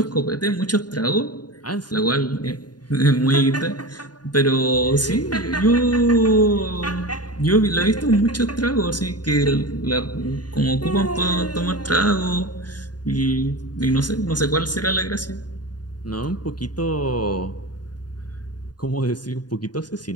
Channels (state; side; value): late; right; 0.70 ms